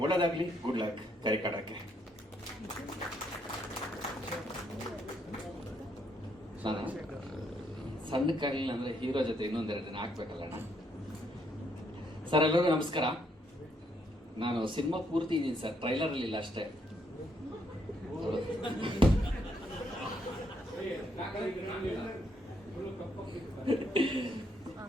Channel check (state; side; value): normal; both; correlation 0.73